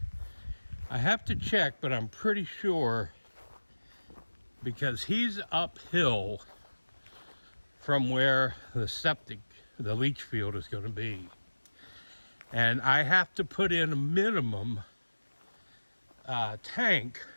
I have to check, but I'm pretty sure, because he's uphill from where the leach field is going to be. And I have to put in a minimum tank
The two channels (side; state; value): both; inverted; correlation -1.00